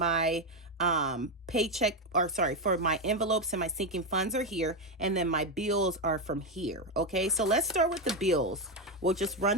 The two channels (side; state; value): both; normal; correlation 0.09